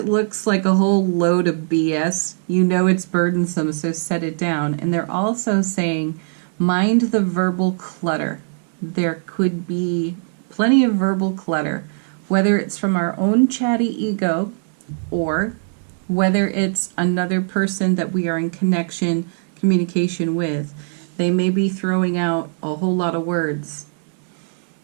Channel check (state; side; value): silent; left; digital silence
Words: looks like a whole load of BS, you know it's burdensome, so set it down. And they're also saying mind the verbal clutter. There could be plenty of verbal clutter, whether it's from our own chatty ego or whether it's another person that we are in communication with. They may be throwing out a whole lot of words,